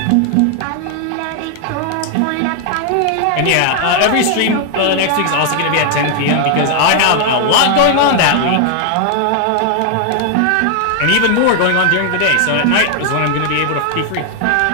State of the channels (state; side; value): different; both; correlation 0.00